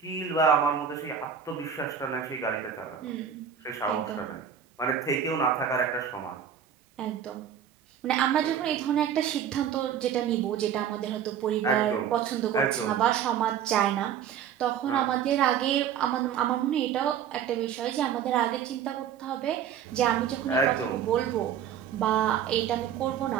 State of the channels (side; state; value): left; quieter; 8.5 dB